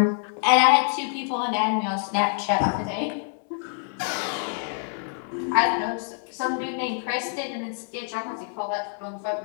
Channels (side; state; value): right; silent; 61 dB below the other